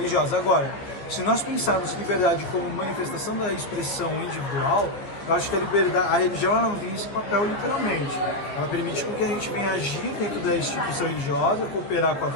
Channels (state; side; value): late; right; 14 ms